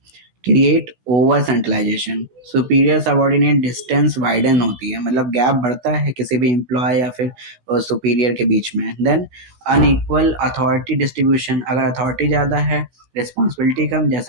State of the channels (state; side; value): late; left; 16 ms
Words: Create over centralization, superior subordinate distance widen होती है, मतलब गैप बढ़ता है किसी भी एम्प्लॉय या फिर सुपीरियर के बीच में। देन अनइक्वल अथॉरिटी डिस्ट्रीब्यूशन, अगर अथॉरिटी ज़्यादा है रिस्पॉन्सिबिलिटी कम,